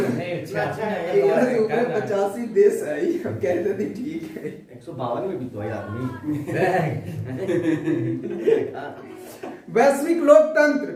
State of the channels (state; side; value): identical; both; correlation 1.00